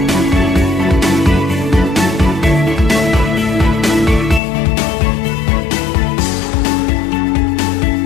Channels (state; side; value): drops out; right; at 4.4 s